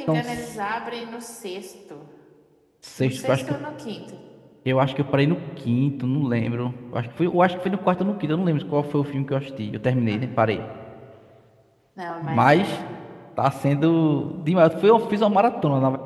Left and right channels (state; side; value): identical; both; correlation 1.00